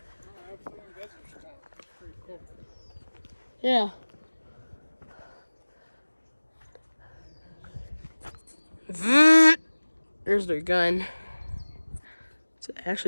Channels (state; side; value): inverted; both; correlation -1.00